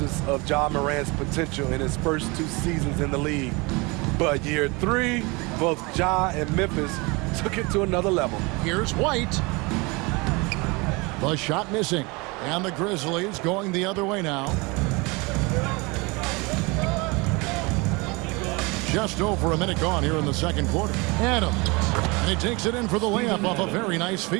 of Ja Morant's potential in his first 2 seasons in the league. But year 3, both Ja and Memphis took it to another level. Here's White. The shot missing. And the Grizzlies going the other way now. Just over a minute gone here in the second quarter. Adams. And he takes it in for the layup off a very nice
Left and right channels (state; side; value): quieter; left; 26.4 dB